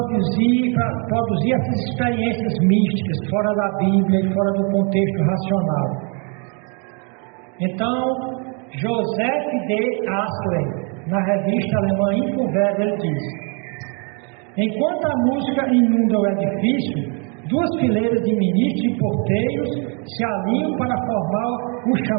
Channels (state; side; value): quieter; left; 36.3 dB